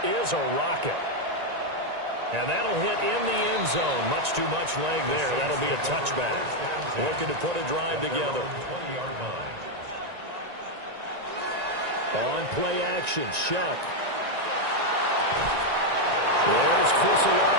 is a rocket. And that'll hit in the end zone. Much too much leg there. That'll be a touchback. Looking to put a drive together. On play action, Shuck. There's Chris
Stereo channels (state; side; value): late; left; 1.9 ms